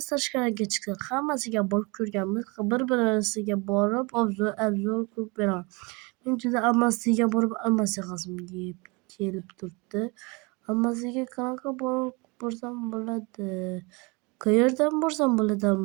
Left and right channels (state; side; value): quieter; left; 27.8 dB